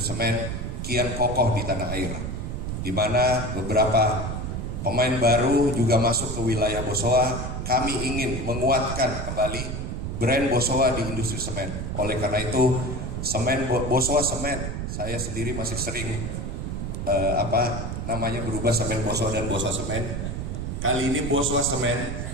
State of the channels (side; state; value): right; noise; rumble, 4 dB below the sound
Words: semen kian kokoh di tanah air, di mana beberapa pemain baru juga masuk ke wilayah Bosowa. Kami ingin menguatkan kembali brand Bosowa di industri semen. Oleh karena itu, semen Bosowa Semen, saya sendiri masih sering berubah Semen Bosowa dan Bosowa Semen. Kali ini Bosowa Semen